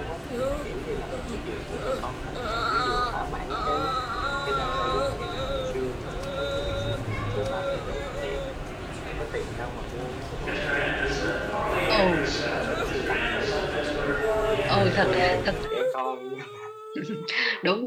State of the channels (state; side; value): identical; both; correlation 1.00